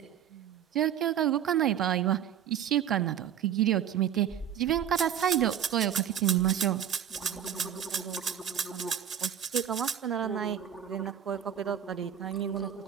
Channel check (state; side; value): quieter; left; 9.5 dB